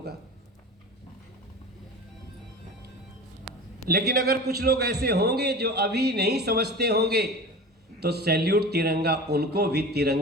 लेकिन अगर कुछ लोग ऐसे होंगे जो अभी नहीं समझते होंगे तो सैल्यूट तिरंगा उनको भी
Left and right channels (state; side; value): normal; both; correlation 0.34